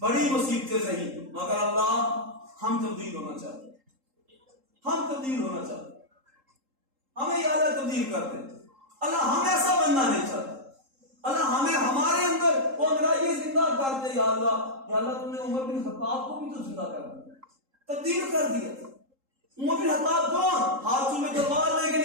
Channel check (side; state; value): left; late; 3.8 ms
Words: بڑی مصیبتیں سے ہی، مگر اللہ ہم تبدیل ہونا چاہتے ہیں، ہم تبدیل ہونا چاہتے ہیں، ہمیں یا اللہ تبدیل کر دے، اللہ ہم ایسا بننا نہیں چاہتے، اللہ ہمیں ہمارے اندر وہ انگریزی زندہ کر دے، یا اللہ تم نے عمر بن خطاب کو بھی تو زندہ کر دیا، تبدیل کر دیا۔ عمر بن خطاب کون؟ ہاتھوں میں تلوار لے کے